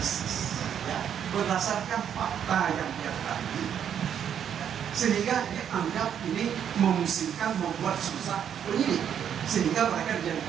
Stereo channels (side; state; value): left; quieter; 8.8 dB